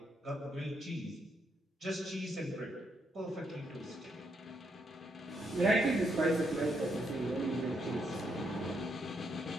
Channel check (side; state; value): both; normal; correlation 0.77